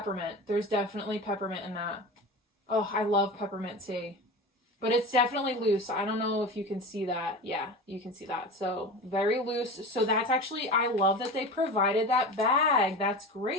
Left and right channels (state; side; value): normal; both; correlation 0.30